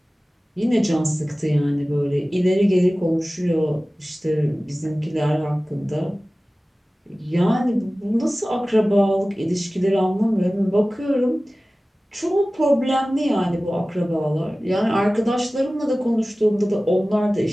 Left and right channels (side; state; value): both; normal; correlation 0.97